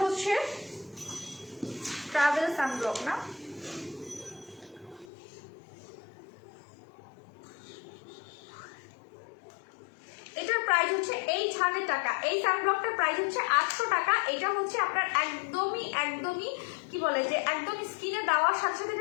হচ্ছে ট্রাভেল সানব্লক না, এটার প্রাইস হচ্ছে 800 টাকা। এই সানব্লকটার প্রাইস হচ্ছে 800 টাকা। এটা হচ্ছে আপনার একদমই কি বলে যে একদম স্কিনে দেওয়ার সাথে সাথে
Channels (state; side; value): drops out; right; at 5.1 s